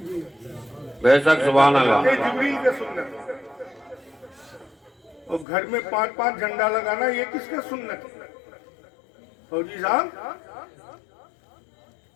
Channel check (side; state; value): right; drops out; at 5.5 s